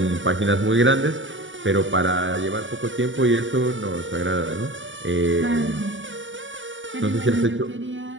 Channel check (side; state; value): left; late; 0.56 ms